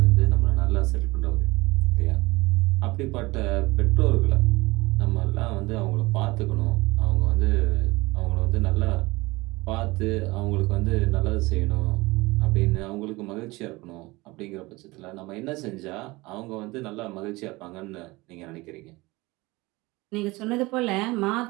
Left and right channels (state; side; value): quieter; left; 22.0 dB